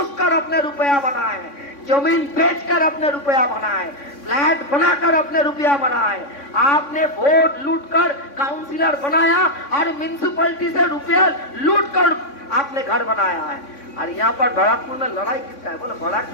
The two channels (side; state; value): right; late; 3.6 ms